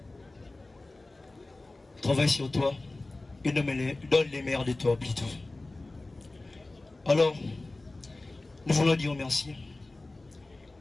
Travaille sur toi et donne les meilleurs de toi plutôt. Alors, nous voulons dire merci.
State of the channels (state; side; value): quieter; right; 3.0 dB